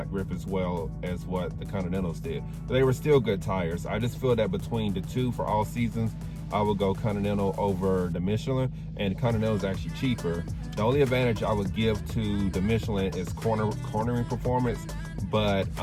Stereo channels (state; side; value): identical; both; correlation 1.00